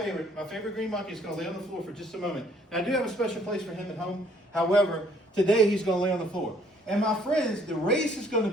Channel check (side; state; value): both; normal; correlation 0.63